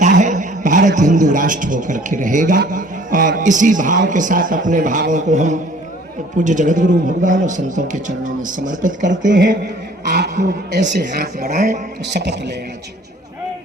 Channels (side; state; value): both; normal; correlation 0.53